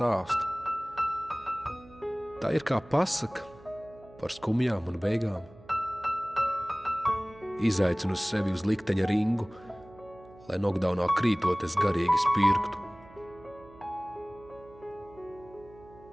Tā ir kā pasaka par skumjām un beigām. Izaicinu sevi uz likteņa ringu, lai nokdaunā krītot es garīgi spirktu.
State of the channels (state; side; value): noise; right; hum, 22 dB below the sound